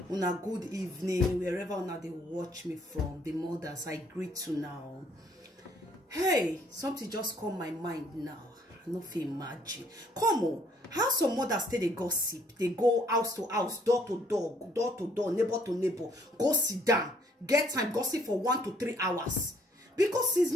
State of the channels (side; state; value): both; normal; correlation 0.64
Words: una good evening, wherever una they watch me from. The mothers, I greet you now. Hey, something just come my mind now. I no fit imagine. Come on, how some mothers stay they gossip? They go house to house, door to door, neighbor to neighbor, go sit down, get time, gossip for 1 to 3 hours. Because since